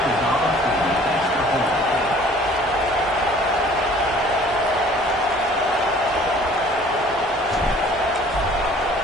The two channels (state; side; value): normal; both; correlation 0.52